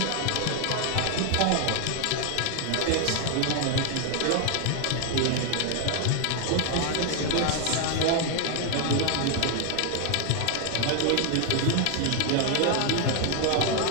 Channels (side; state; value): both; different; correlation 0.00